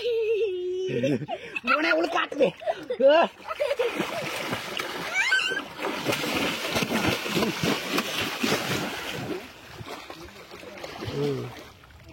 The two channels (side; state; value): both; identical; correlation 1.00